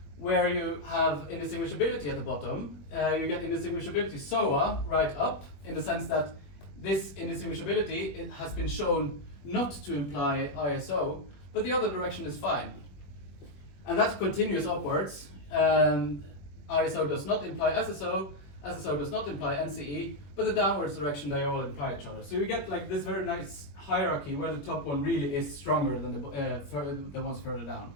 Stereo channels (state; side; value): late; right; 21 ms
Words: where you have indistinguishability at the bottom. You get indistinguishability SOA right up, in the sense that this indistinguishability, it has been shown not to imply ISO, but the other direction is fine. And that continues upwards. ISO does not imply SSO, SSO does not imply NCE, but the downwards direction they all imply each other. So you get like this very nice hierarchy where the top one really is stronger than the ones further down.